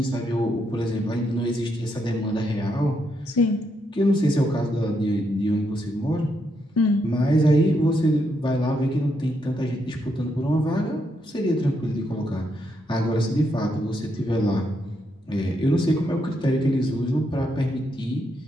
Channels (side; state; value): both; normal; correlation 0.79